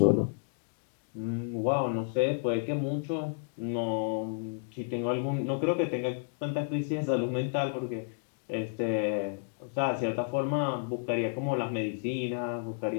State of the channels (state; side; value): silent; right; digital silence